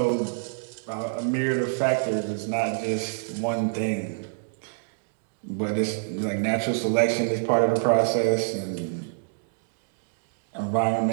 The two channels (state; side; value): silent; left; digital silence